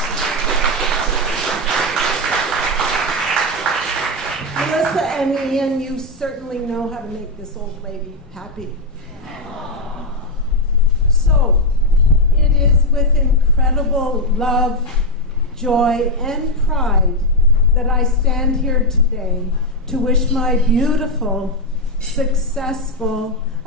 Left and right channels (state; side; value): normal; both; correlation 0.04